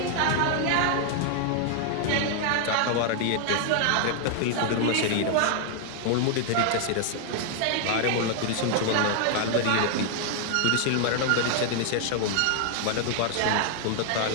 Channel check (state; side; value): different; both; correlation 0.00